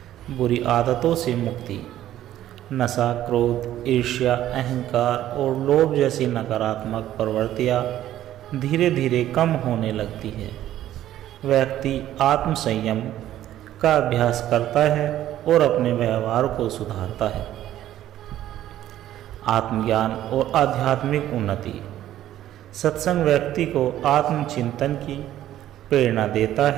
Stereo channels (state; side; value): quieter; left; 12.8 dB